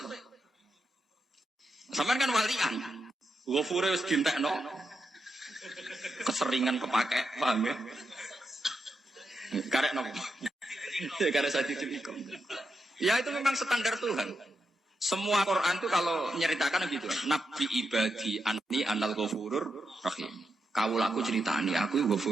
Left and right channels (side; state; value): both; normal; correlation 0.85